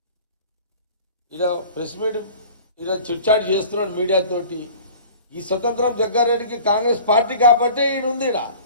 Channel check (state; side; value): inverted; both; correlation -0.44